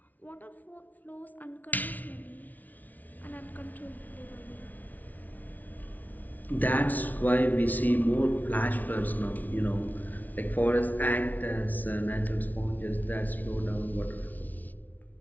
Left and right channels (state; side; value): late; right; 0.078 ms